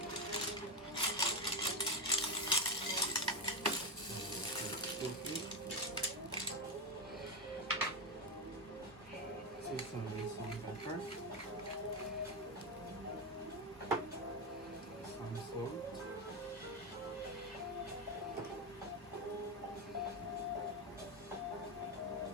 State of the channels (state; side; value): normal; both; correlation 0.10